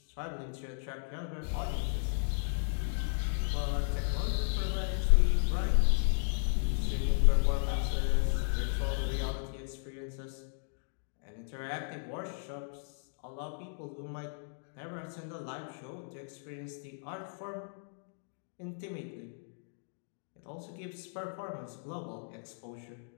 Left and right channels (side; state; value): right; silent; digital silence